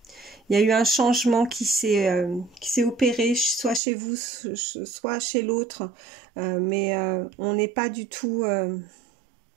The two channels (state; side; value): drops out; left; at 3.8 s